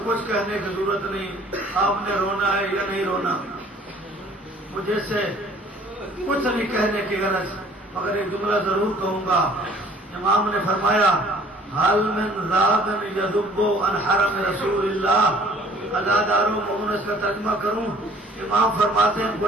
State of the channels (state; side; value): normal; both; correlation 0.54